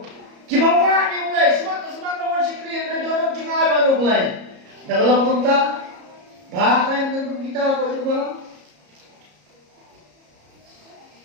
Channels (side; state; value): left; late; 34 ms